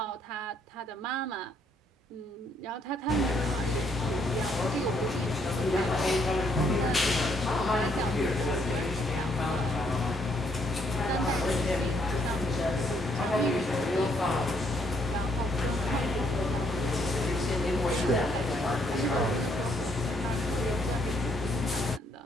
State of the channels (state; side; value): normal; both; correlation 0.70